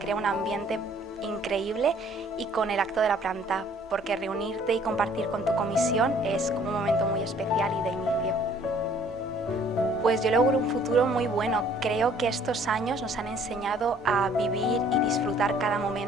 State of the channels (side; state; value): both; normal; correlation 0.58